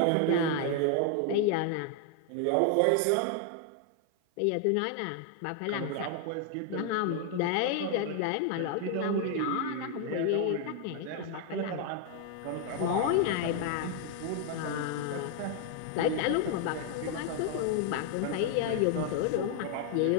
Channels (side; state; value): both; different; correlation 0.00